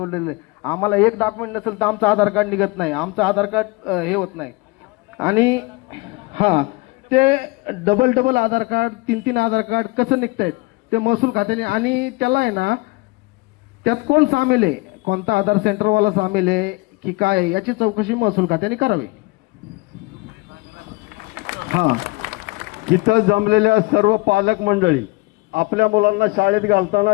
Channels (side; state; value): right; quieter; 25.0 dB